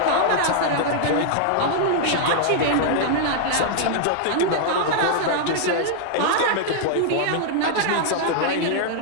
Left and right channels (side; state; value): both; different; correlation -0.01